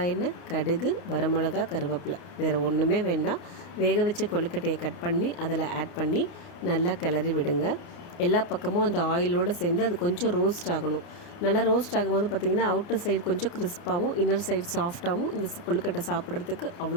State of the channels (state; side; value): late; right; 29 ms